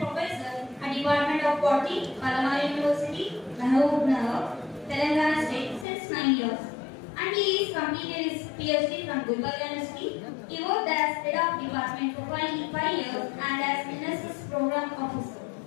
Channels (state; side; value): drops out; right; at 5.9 s